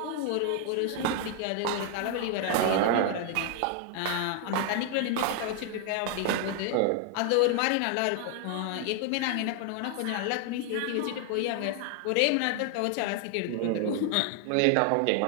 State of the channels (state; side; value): different; both; correlation 0.00